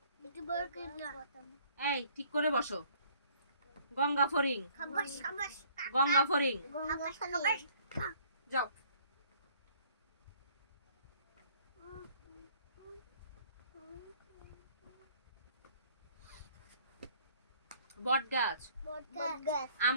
এই ঠিক করে বসো। গঙ্গা ফড়িং, গঙ্গা ফড়িং, যাও। বট গাছ,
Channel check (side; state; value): both; inverted; correlation -0.58